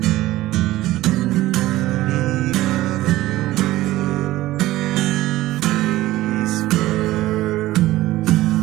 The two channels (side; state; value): left; quieter; 16.5 dB